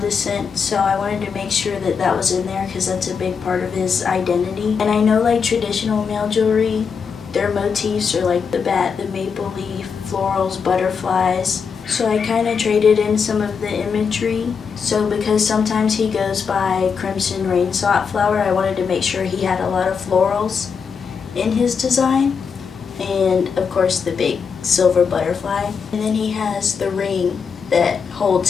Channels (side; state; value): right; quieter; 6.0 dB